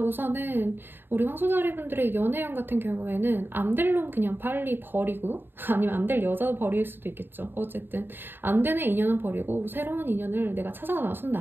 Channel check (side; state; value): left; late; 0.098 ms